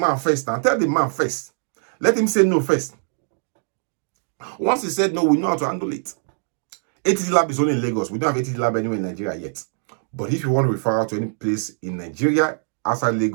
first. Now tell the man first. Let him say no first. Once he said no, we know how to handle it. ATG lab is only in Lagos. We don't have ATG lab anywhere in Nigeria yet. But if you want to refer out to any place in Nigeria, outside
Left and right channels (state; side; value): silent; left; digital silence